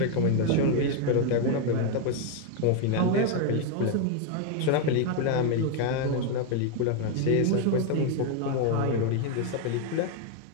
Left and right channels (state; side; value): different; both; correlation 0.01